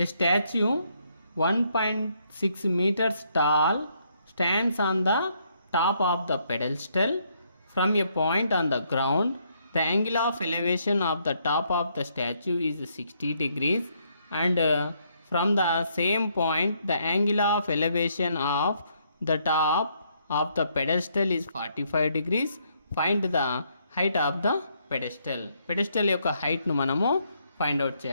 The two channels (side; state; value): both; inverted; correlation -0.72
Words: statue 1.6 meters tall stands on the top of the pedestal from a point on the ground. The angle of elevation of the top of the statue is 60 degrees and from the same point the angle of elevation of the top of the pedestal is 45 degrees. Find the height of the pedestal. Pedestal యొక్క హైట్ను మనము ఫైండ్ అవుట్